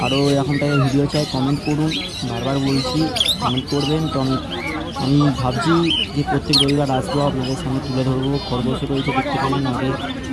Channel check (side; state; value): both; identical; correlation 1.00